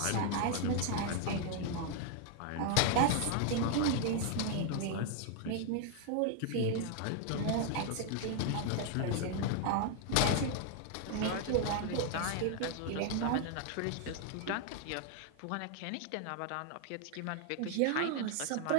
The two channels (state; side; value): different; both; correlation 0.00